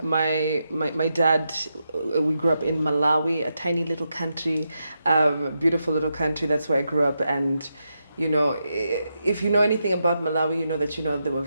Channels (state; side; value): inverted; both; correlation -0.85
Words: my dad, we grew up in Malawi, a tiny little country, beautiful little country. That's where I grew up. And, if you know anything about Malawi, you know that, there were